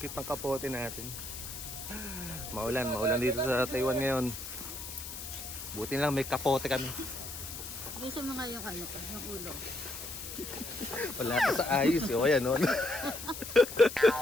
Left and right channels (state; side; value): noise; left; hiss, 9 dB below the sound